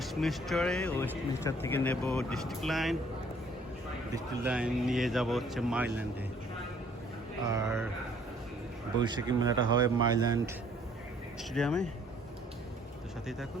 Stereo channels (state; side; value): normal; both; correlation 0.60